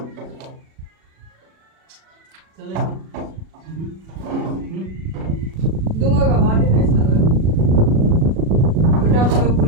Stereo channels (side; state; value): left; late; 37 ms